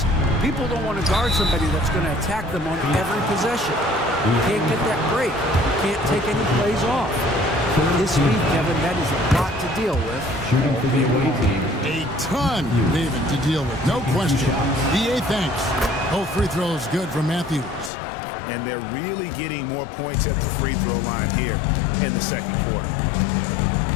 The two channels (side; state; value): right; drops out; at 17.9 s